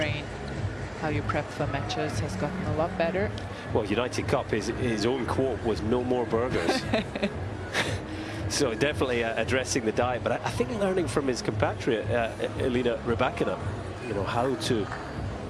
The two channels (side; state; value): both; identical; correlation 1.00